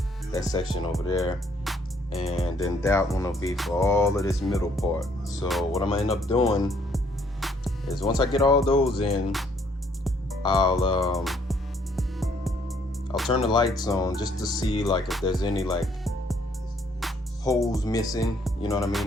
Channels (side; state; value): both; normal; correlation 0.66